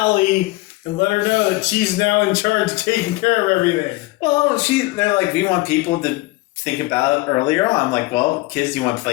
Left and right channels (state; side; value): quieter; right; 20.9 dB